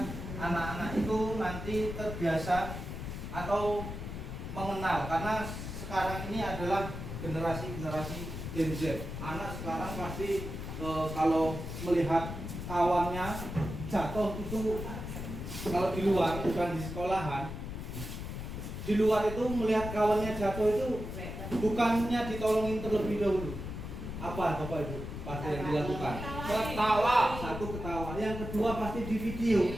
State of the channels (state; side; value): noise; left; rumble, 7 dB below the sound